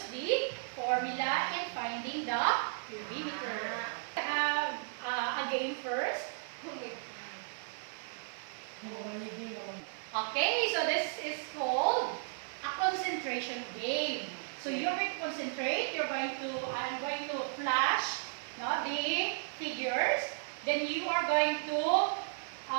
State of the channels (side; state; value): left; silent; 55 dB below the other